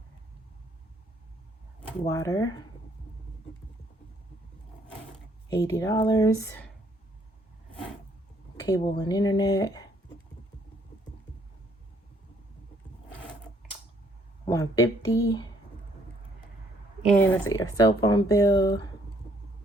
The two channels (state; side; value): normal; both; correlation 0.66